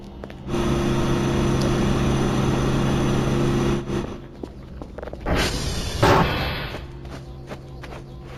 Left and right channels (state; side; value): identical; both; correlation 1.00